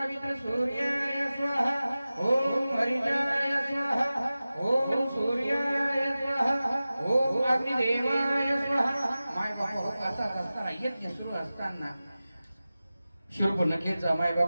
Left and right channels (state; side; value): inverted; both; correlation -0.96